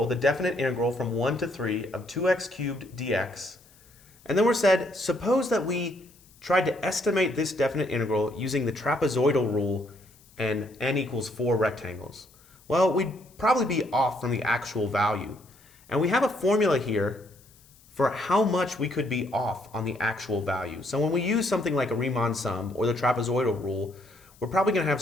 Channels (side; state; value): left; noise; hiss, 28 dB below the sound